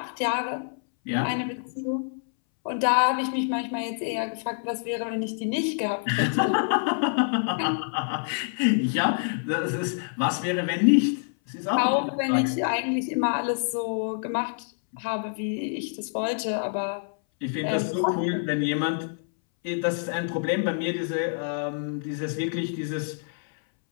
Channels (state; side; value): silent; right; 60 dB below the other